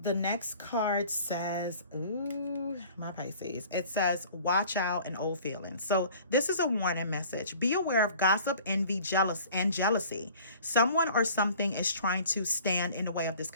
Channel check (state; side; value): inverted; both; correlation -0.48